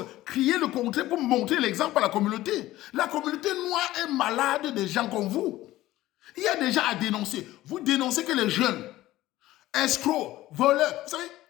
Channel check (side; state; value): right; quieter; 16.0 dB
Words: Criez le contraire pour montrer l'exemple à la communauté. La communauté noire est malade des gens comme vous. Il y a des gens à dénoncer. Vous dénoncez que les jeunes, escrocs, voleurs, vous savez,